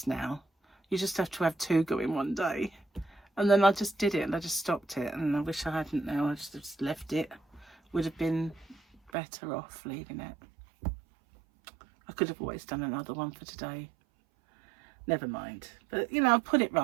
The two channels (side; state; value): left; drops out; at 9.1 s